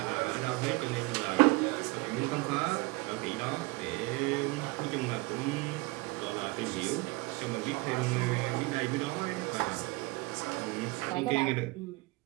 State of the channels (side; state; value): left; quieter; 24.3 dB